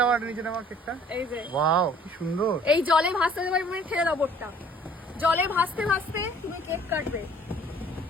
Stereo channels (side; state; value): both; normal; correlation 0.55